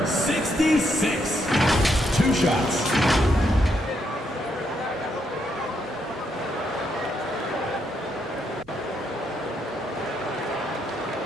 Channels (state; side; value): normal; both; correlation 0.77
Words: 66. 2 shots.